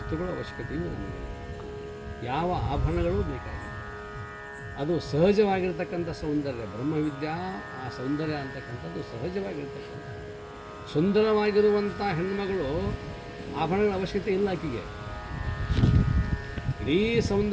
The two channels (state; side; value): identical; both; correlation 1.00